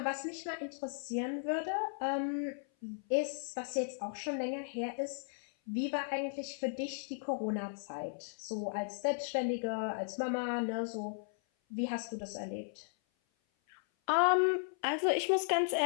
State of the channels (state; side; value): silent; right; 54 dB below the other